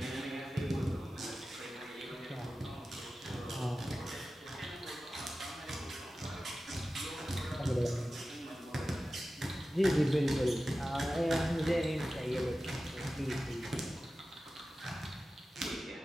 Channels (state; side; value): normal; both; correlation 0.94